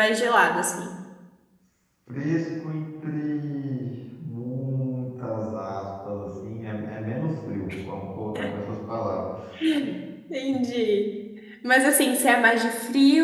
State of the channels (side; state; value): both; identical; correlation 1.00